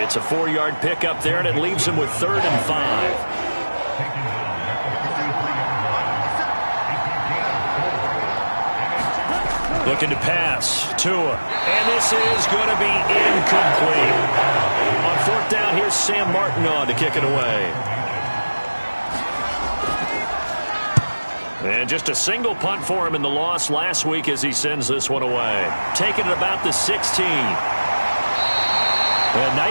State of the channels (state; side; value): inverted; both; correlation -1.00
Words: It's a 4-yard pickup there, and it leaves him with 3rd and 5. Looking to pass. Tua. And this is going to be incomplete. On 4th down, here's Sam Martin on to kick it away. And just a single punt for him in the loss last week as he sends this one away. Taking it about the 16. A